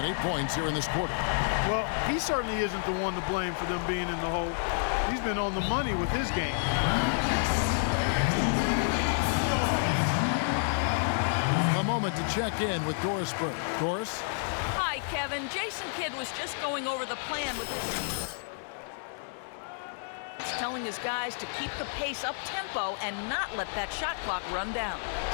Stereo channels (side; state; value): right; silent; 58 dB below the other